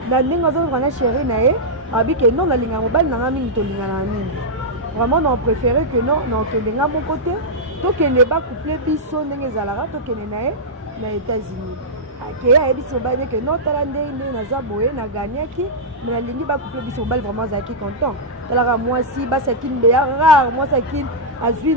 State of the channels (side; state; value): both; normal; correlation -0.09